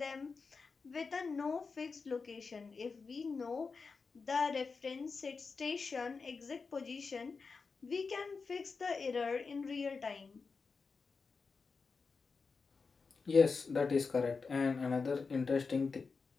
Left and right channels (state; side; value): quieter; right; 4.7 dB